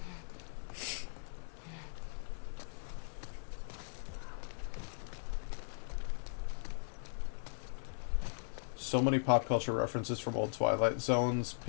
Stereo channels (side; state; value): right; silent; 52 dB below the other